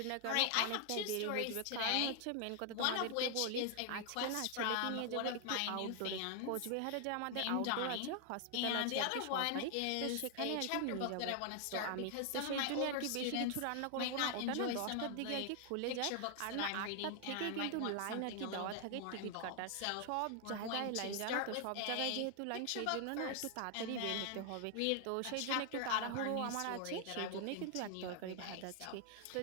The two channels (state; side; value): different; both; correlation 0.00